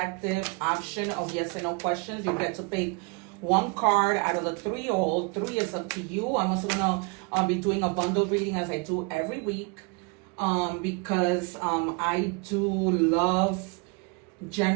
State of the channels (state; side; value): quieter; left; 31.3 dB